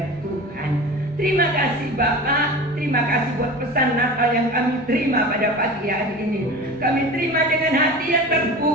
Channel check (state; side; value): normal; both; correlation 0.34